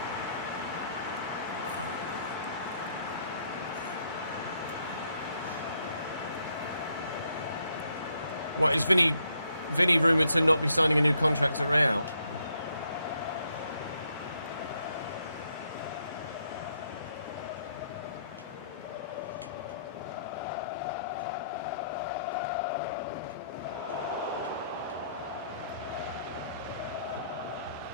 What is Vinny rumoured to not be signing a new contract at Real?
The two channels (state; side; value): inverted; both; correlation -0.72